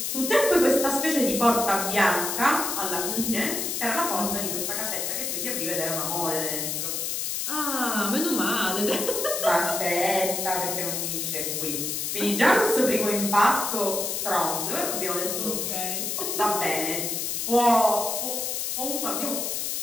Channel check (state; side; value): noise; left; hiss, 2 dB below the sound